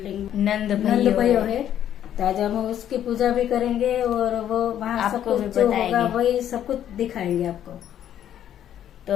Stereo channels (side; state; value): right; quieter; 10.6 dB